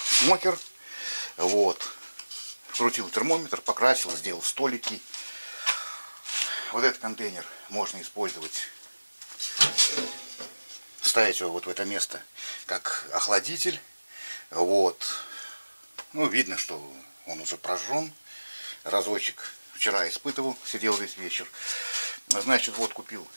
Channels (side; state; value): both; inverted; correlation -1.00